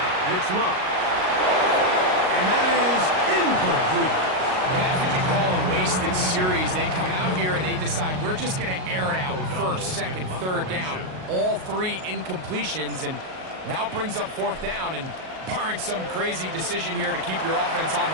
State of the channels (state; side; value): late; left; 38 ms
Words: it's Love. And that is incomplete. And that's what you call a wasted series. They come out here and they decide we're just going to air it out first, second, third down. All 3 incompletions, and now it brings up 4th down. And barring some crazy decision here to keep your offense on